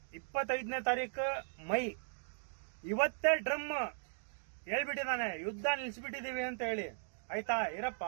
25ನೇ ತಾರೀಕು ಮೈ. ಇವತ್ತೇ ಡ್ರಮ್ ಹೇಳ್ಬಿಟ್ಟಿದ್ದಾನೆ, ಯುದ್ಧ ನಿಲ್ಸ್ಬಿಟ್ಟಿದೀವಿ ಅಂತ ಹೇಳಿ. ಆಯ್ತಾ ಇರಪ್ಪ,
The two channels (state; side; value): silent; left; digital silence